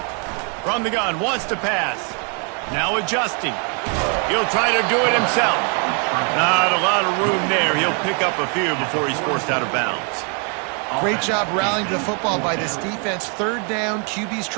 From the gun, wants to pass. Now adjusting. He'll try to do it himself. Not a lot of room there. He'll pick up a few before he's forced out of bounds. Great job rallying to the football by this defense. Third down, QB's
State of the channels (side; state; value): left; quieter; 37.0 dB